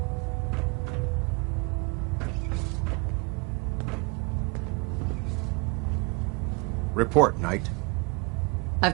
Report, Knight. I've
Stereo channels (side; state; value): left; quieter; 29.2 dB